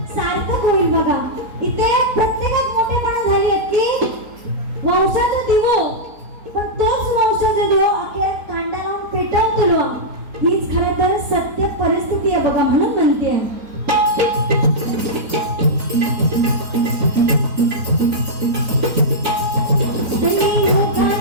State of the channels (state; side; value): late; left; 4.0 ms